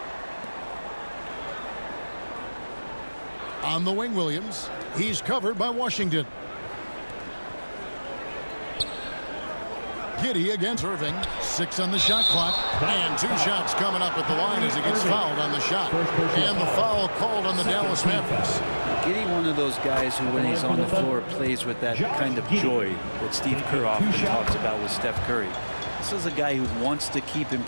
On the wing, Williams. He's covered by Washington. Giddey against Irving. 6 on the shot clock. And 2 shots coming up at the line as he gets fouled on the shot. And the foul called on the Dallas Mavericks. Giddey, one of those guys who, when he's on the floor, plays with that kind of joy that Steve Kerr often talks about with Steph Curry. This is a guy who wants to keep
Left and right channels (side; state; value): both; inverted; correlation -1.00